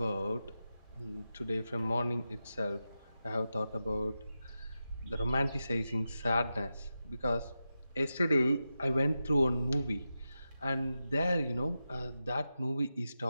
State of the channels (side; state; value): both; inverted; correlation -0.90